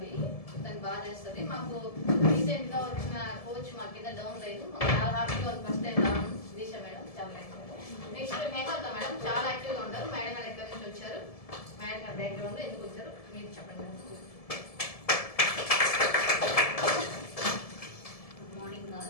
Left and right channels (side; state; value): right; late; 1.7 ms